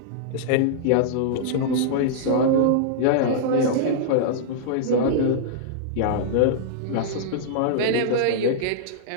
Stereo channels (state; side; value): different; both; correlation -0.02